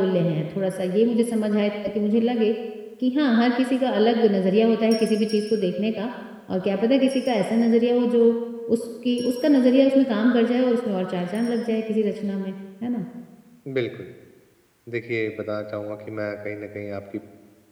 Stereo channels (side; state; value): both; identical; correlation 1.00